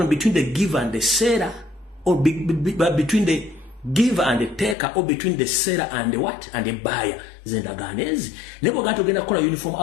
between the giver and the seller or between the giver and the taker or between the seller and the what? And the buyer. Zendaganezi. Nebo gato genda kola uniform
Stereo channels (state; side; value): drops out; right; at 4.8 s